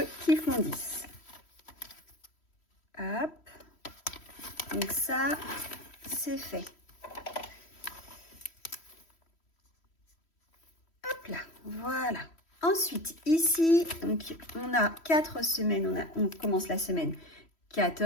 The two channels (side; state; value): right; late; 3.1 ms